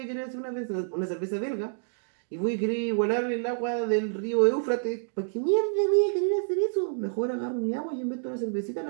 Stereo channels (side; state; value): left; silent; digital silence